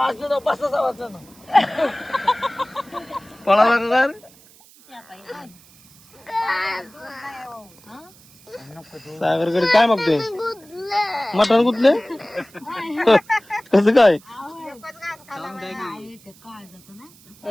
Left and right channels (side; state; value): right; noise; hiss, 25 dB below the sound